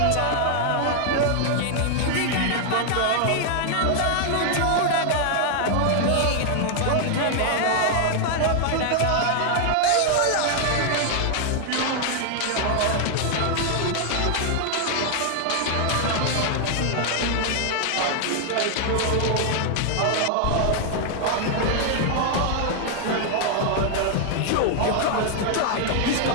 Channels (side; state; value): both; different; correlation 0.00